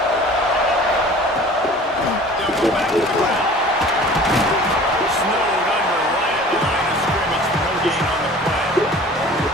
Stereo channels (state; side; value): normal; both; correlation 0.45